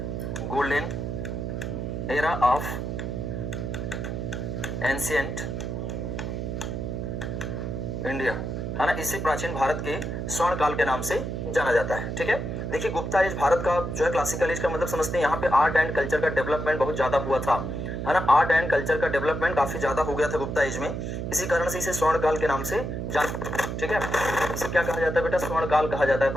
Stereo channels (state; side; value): noise; right; hum, 4 dB below the sound